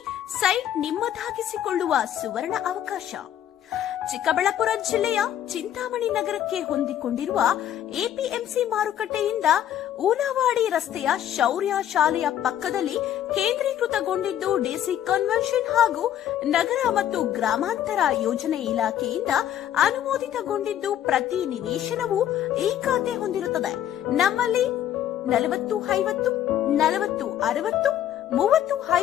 ಸೈಟ್ ನಿಮ್ಮದಾಗಿಸಿಕೊಳ್ಳುವ ಸುವರ್ಣ ಅವಕಾಶ. ಚಿಕ್ಕಬಳ್ಳಾಪುರ ಜಿಲ್ಲೆಯ ಚಿಂತಾಮಣಿ ನಗರಕ್ಕೆ ಹೊಂದಿಕೊಂಡಿರುವ ಎಪಿಎಂಸಿ ಮಾರುಕಟ್ಟೆಯಿಂದ ಊನವಾಡಿ ರಸ್ತೆಯ ಶೌರ್ಯ ಶಾಲೆಯ ಪಕ್ಕದಲ್ಲಿ ಕೇಂದ್ರೀಕೃತಗೊಂಡಿದ್ದು ಡಿಸಿ ಕನ್ವೆನ್ಷನ್ ಹಾಗೂ ನಗರ ಮತ್ತು ಗ್ರಾಮಾಂತರ ಯೋಜನೆ ಇಲಾಖೆಯಿಂದ ಅನುಮೋದಿತಗೊಂಡಿದ್ದು ಪ್ರತಿ ನಿವೇಶನವು ಈ ಖಾತೆ ಹೊಂದಿರುತ್ತದೆ. ನಮ್ಮಲ್ಲಿ 40-50, 40-60,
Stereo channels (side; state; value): right; quieter; 11.0 dB